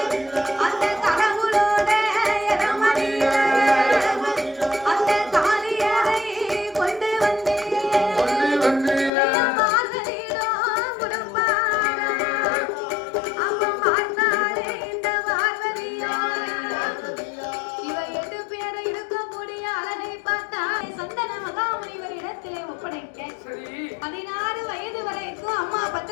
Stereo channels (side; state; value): right; drops out; at 9.1 s